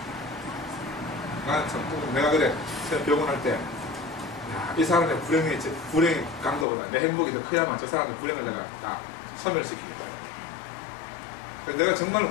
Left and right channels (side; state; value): right; drops out; at 6.7 s